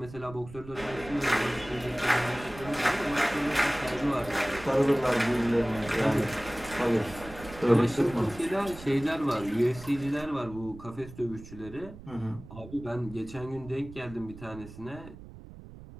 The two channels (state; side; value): noise; right; rumble, 16 dB below the sound